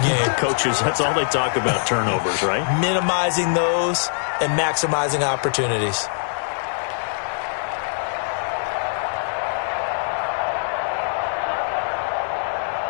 Coaches, that's all they talk about, turnovers, right? Minimizing those and maximizing opportunities.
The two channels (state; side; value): silent; right; 60 dB below the other